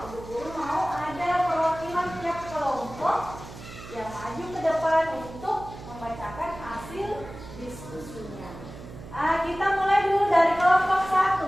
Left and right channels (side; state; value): right; noise; hum, 14 dB below the sound